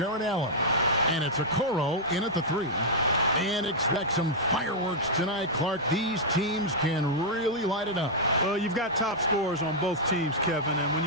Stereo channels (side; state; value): both; normal; correlation -0.06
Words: Allen, and it's Okoro in at the 3. And expect some fireworks tonight, Clark. These teams can really light it up. Well, you've got top scorers on both teams, Kevin, and when